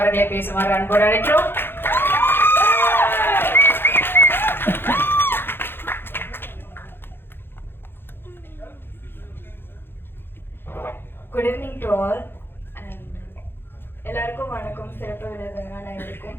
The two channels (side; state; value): right; late; 0.10 ms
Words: பேசுமாறு அன்போடு அழைக்கிறோம். Good evening to all and எல்லாருக்கும் வணக்கம். சிறப்பு விருதுகள்